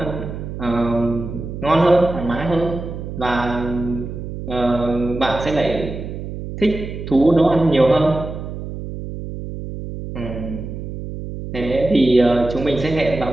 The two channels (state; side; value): noise; right; hum, 8 dB below the sound